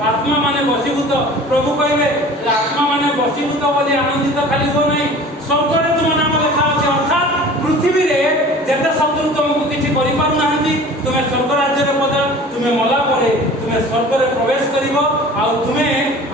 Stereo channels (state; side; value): normal; both; correlation 0.43